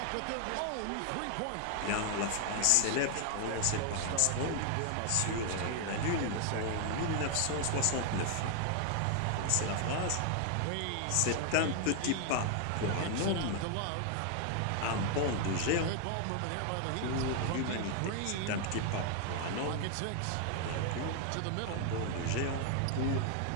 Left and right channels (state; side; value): different; both; correlation 0.00